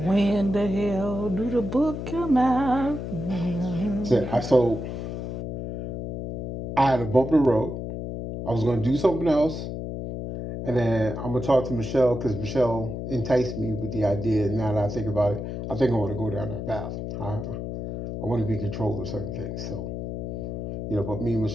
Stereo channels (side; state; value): left; noise; hum, 5 dB below the sound